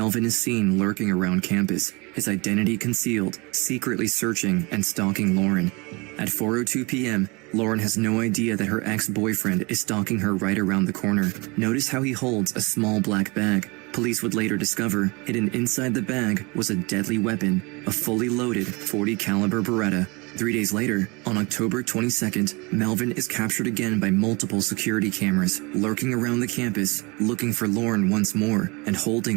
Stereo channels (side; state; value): left; quieter; 27.0 dB